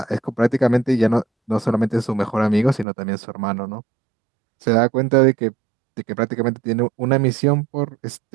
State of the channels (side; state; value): left; drops out; at 2.9 s